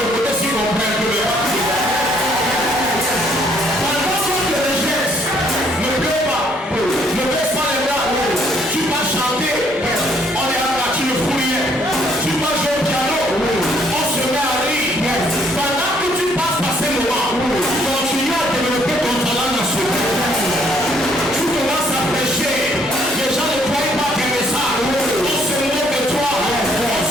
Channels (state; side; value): normal; both; correlation 0.66